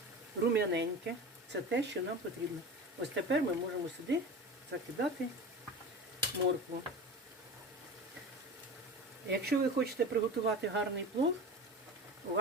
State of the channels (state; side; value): normal; both; correlation 0.31